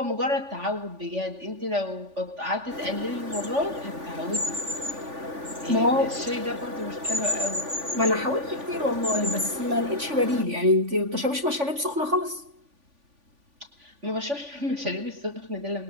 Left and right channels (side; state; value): left; late; 3.5 ms